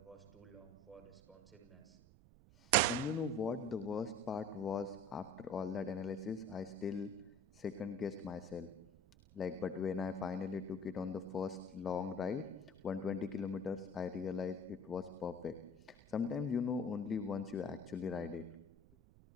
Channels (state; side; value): noise; right; rumble, 23 dB below the sound